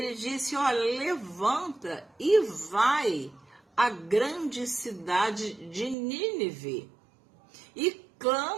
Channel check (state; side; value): drops out; left; at 6.0 s